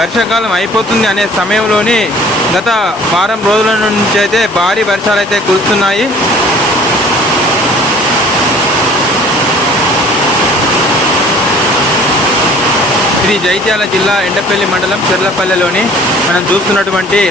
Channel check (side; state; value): both; normal; correlation 0.50